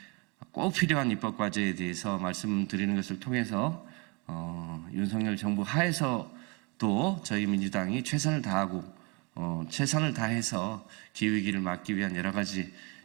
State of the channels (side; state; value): left; quieter; 30.1 dB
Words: 꼭 필요한 입법 과제에 대해서 말씀드리는 것을 통해서 윤석열 정부 하에서도 저희 민주당이 최선을 다하고 최선을 다해서 기후위기를 막기 위한 여러 가지